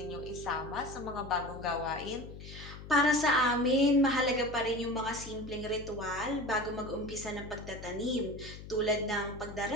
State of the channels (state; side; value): noise; left; hum, 13 dB below the sound